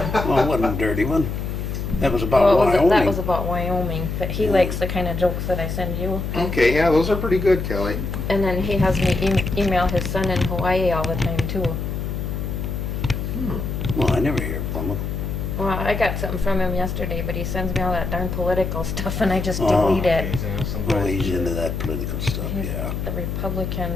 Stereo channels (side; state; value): left; noise; hum, 4 dB below the sound